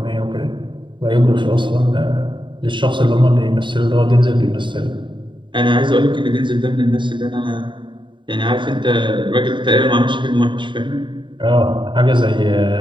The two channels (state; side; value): late; left; 0.23 ms